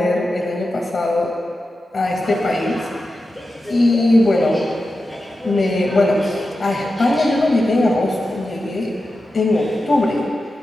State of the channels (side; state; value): both; normal; correlation 0.91